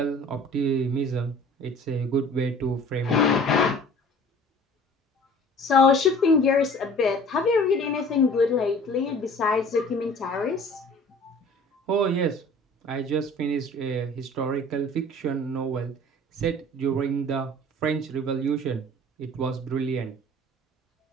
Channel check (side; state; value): both; normal; correlation 0.48